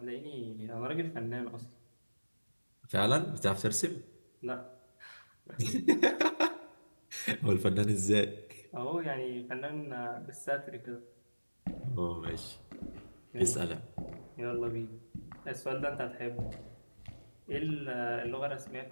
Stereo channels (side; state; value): both; inverted; correlation -1.00